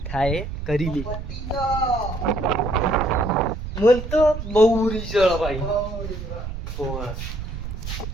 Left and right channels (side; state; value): right; noise; rumble, 7 dB below the sound